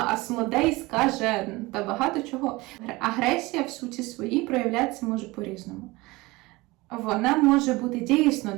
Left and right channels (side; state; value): left; quieter; 21.8 dB